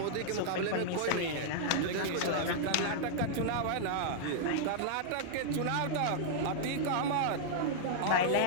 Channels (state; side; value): different; both; correlation -0.01